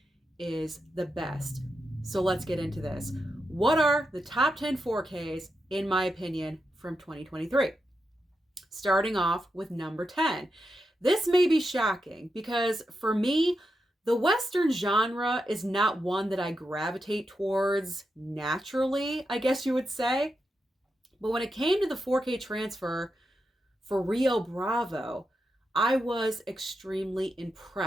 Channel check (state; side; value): normal; both; correlation 0.86